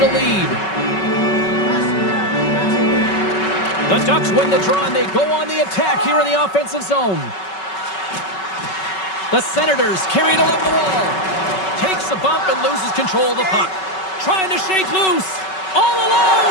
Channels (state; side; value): late; right; 5.3 ms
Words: lead. The Ducks win the draw, and they go on the attack here in the offensive zone. The Senators carry it along the wall. Takes a bump and loses control of the puck. Trying to shake loose. All